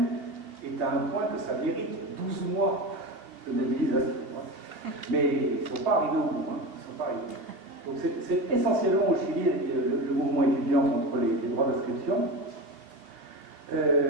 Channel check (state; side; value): late; left; 2.6 ms